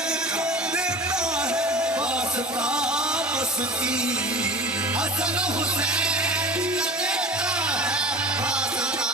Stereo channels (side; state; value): both; normal; correlation 0.36